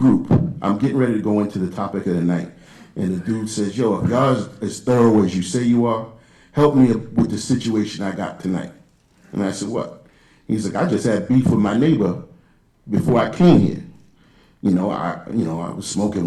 I'm getting ready to go into the topic of the night, and the dude says, yo, if y'all is as thorough as you say you are, help me with the situation I got tonight. And I said, what? He's like, I just had beef with my neighbor before I came here. I was smoking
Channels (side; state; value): both; identical; correlation 1.00